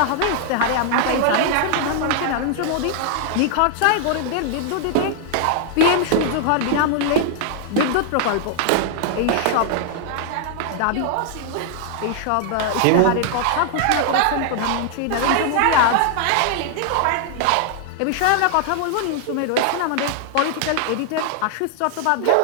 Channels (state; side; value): different; both; correlation 0.00